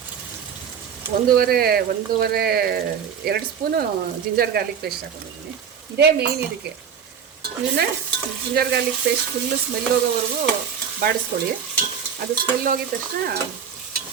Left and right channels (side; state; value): left; quieter; 7.6 dB